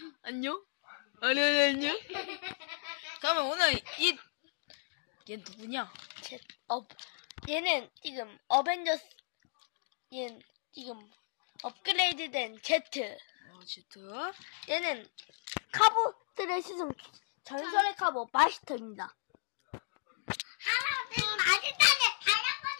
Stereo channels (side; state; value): right; silent; digital silence